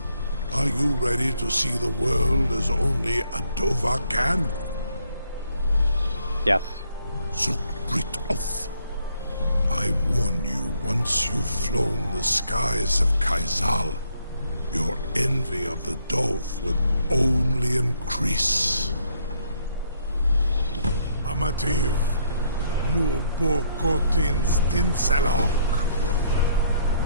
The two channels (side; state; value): both; inverted; correlation -0.69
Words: Are you ready to see the world as only a Dova can? Yes. Zuk Brit Oth. I warn you, once you've flown the skies of Kaizal, your envy of the Dove will only increase. Amativ, nu bokotin stinselok.